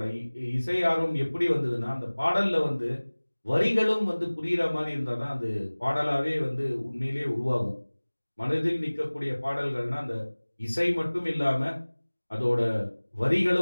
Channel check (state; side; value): inverted; both; correlation -1.00